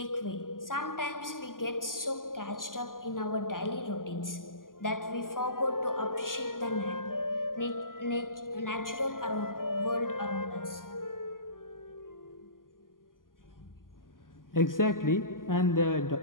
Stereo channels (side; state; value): right; late; 0.91 ms